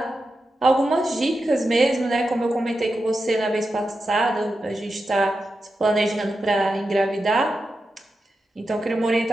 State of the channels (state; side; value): normal; both; correlation 0.89